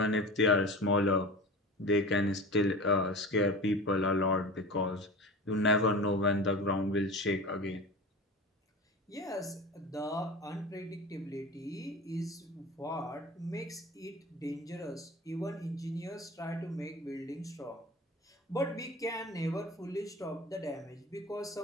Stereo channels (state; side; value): normal; both; correlation 0.34